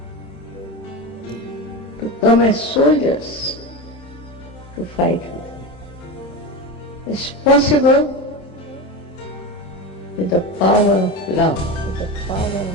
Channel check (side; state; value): right; late; 27 ms